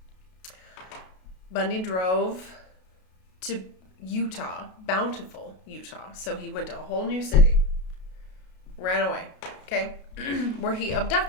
Bundy drove to Utah, Bountiful, Utah. So he went to a whole new city, ran away, okay, where he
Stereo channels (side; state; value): right; late; 32 ms